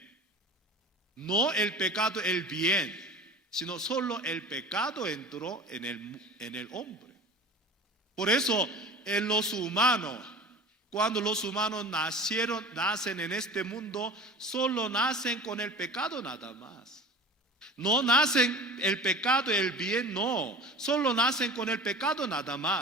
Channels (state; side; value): normal; both; correlation 0.38